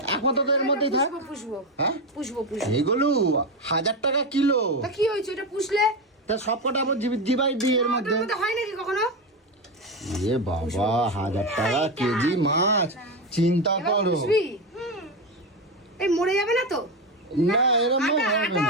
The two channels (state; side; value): normal; both; correlation 0.14